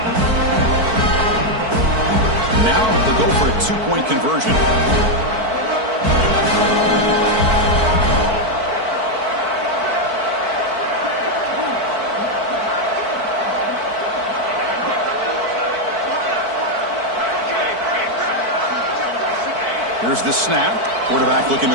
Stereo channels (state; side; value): late; left; 4.5 ms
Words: Now they'll go for a two-point conversion. Here's the snap. Quarterback looking